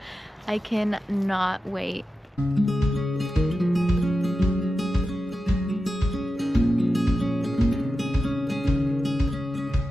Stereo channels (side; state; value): both; normal; correlation 0.91